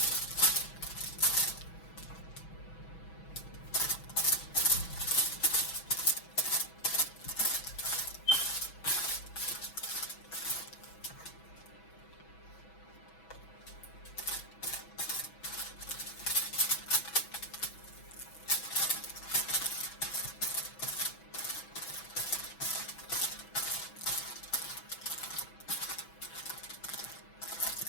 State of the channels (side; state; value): right; late; 6.1 ms